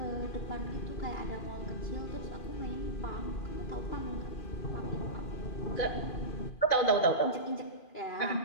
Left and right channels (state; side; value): late; right; 2.4 ms